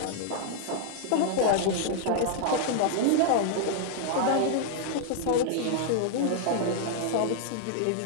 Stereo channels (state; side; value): different; both; correlation -0.01